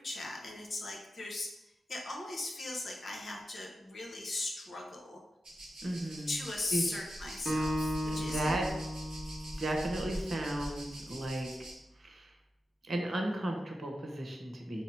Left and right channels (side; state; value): both; normal; correlation 0.91